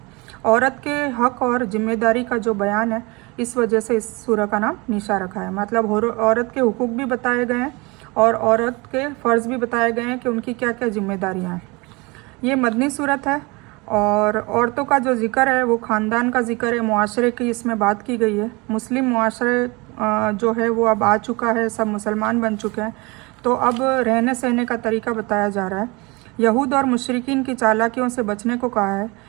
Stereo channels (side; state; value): left; quieter; 25.9 dB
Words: औरत के हक और जिम्मेदारी का जो बयान है, इस वजह से इस सूरह का नाम निशा रखा है। मतलब औरत के हुकूक भी बताए गए हैं और औरत के फ़र्ज़ भी बताए गए हैं कि उनकी क्या क्या जिम्मेदारियां हैं। ये मदनी सूरत है और औरतों का जो ज़िक्र है वो ख़ानदान का ज़िक्र है, मुआशरे की इसमें बात की गई है। मुस्लिम मुआशरे जो है वो अब आ चुका है, सब मुसलमान बन चुके हैं। तो अब रहने सहने का तरीका बताया जा रहा है। यहूद और मुशरिकीन की चालाकियों से बचने को कहा है।